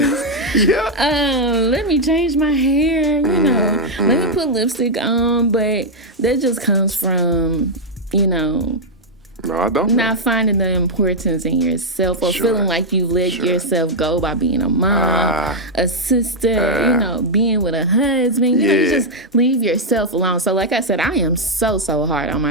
Let me change my hair, Let me put lipstick on. But that just comes from, No, I don't. Not finding the importance in yourself or Sure. feeling like you let yourself go by being a mom, a sister, being with a husband. You just leave yourself alone. So like I said, I am so hard on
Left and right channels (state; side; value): normal; both; correlation -0.02